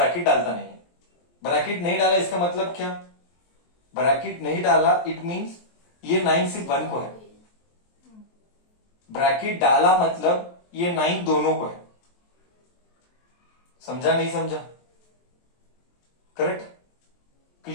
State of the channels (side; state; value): right; late; 23 ms